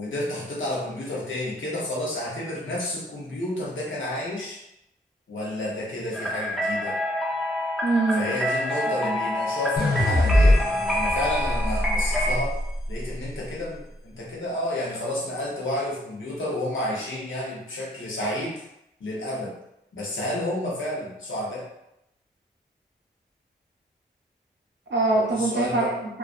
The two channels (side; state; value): both; normal; correlation 0.63